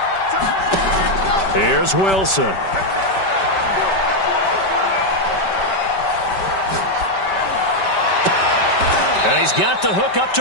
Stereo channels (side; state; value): right; late; 5.2 ms